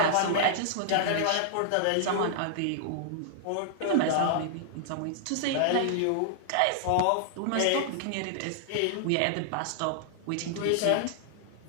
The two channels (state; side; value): different; both; correlation -0.01